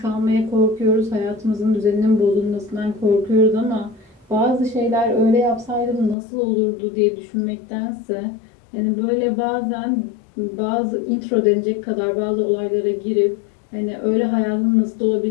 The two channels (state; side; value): drops out; right; at 6.2 s